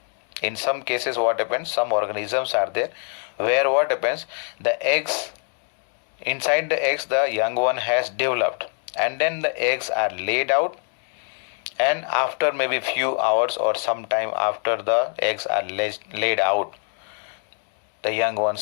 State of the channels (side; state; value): right; silent; 55 dB below the other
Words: In some cases what happens, some organisms are there where what happens, the eggs, inside the eggs the young one has developed, and then the eggs are laid out, and after maybe few hours or some time after the eggs are laid out, the young